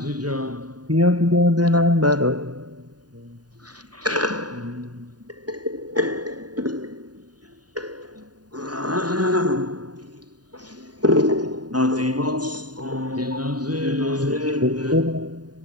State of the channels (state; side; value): late; left; 0.69 ms